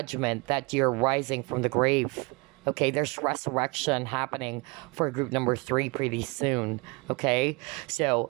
that you're rising from the grave. Okay, there's resurrection happening for group number three pretty soon, okay? So,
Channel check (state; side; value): quieter; left; 28.0 dB